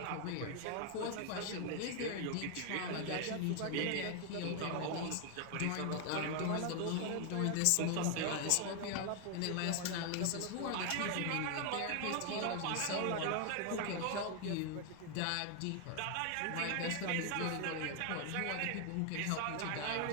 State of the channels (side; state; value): both; different; correlation 0.01